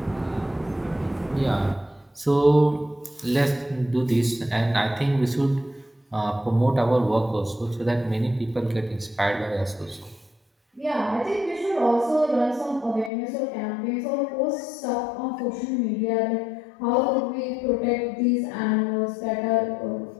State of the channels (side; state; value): right; drops out; at 13.1 s